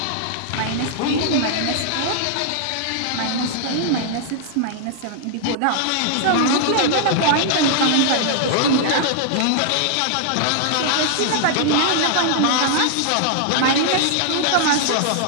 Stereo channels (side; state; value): both; different; correlation -0.01